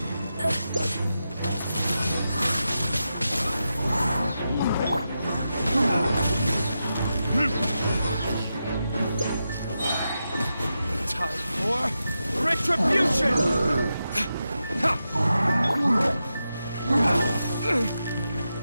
Time for retribution!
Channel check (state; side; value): inverted; both; correlation -0.89